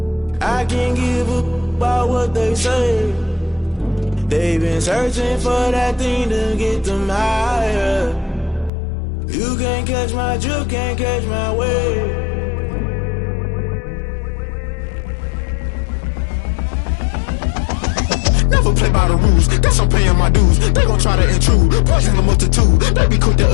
I can't give up about what they say. They've been searching for that thing to get them higher. You can't catch my drift, can't catch my wave. Never play by the rules, guess I'm paying my dues. They gon' try to intrude, poison the multitude. They be quick to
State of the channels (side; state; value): right; drops out; at 8.7 s